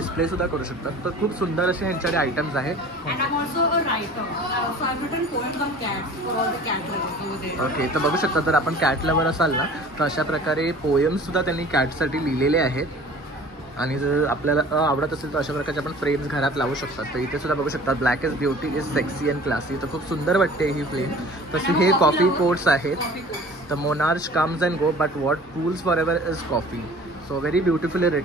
सुद्धा करू शकतात. तर खूप सुंदर असे ह्यांच्याकडे आयटम्स आहेत. And I'm also a writer. So I've written poems on cats for all the cat lovers over there. Okay. तर बघू शकता जर आपण कॅट लवर असाल ना तर अशा प्रकारे पोएम्स सुद्धा त्यांनी कॅटसाठी लिहिलेले आहेत. आणि जर आपल्याला आवडत असेल तर अशा प्रकारचे आपण फ्रेम्स घरात लावू शकतात. तर इथे सुद्धा बघू शकता black is beauty is sexy and classy. तर खूप सुंदर वाटते ही फ्रेम. तसे हे कॉफी कोट्स आहेत. तर monarch comes and go but what cools for ever is coffee. So very beautifully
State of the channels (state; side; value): normal; both; correlation 0.45